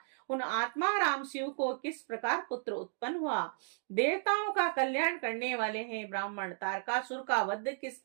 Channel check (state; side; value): silent; left; digital silence